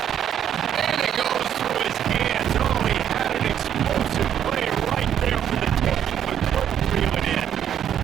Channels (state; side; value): quieter; left; 9.6 dB